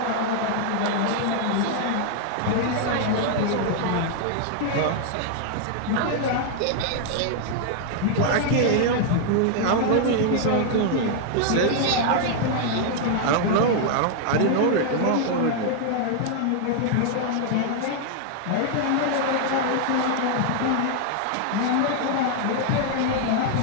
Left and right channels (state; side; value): different; both; correlation 0.00